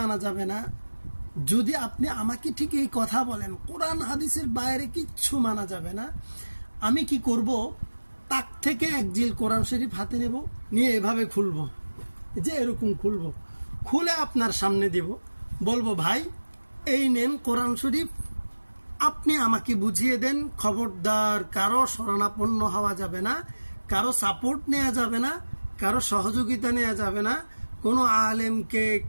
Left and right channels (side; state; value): both; inverted; correlation -1.00